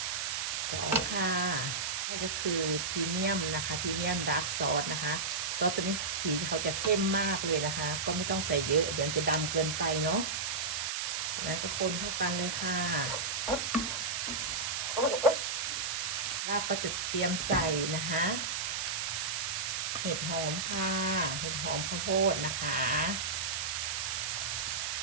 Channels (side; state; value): right; noise; hiss, 1 dB below the sound